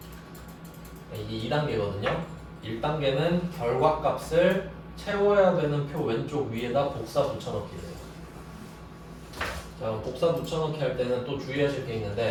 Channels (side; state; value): both; identical; correlation 1.00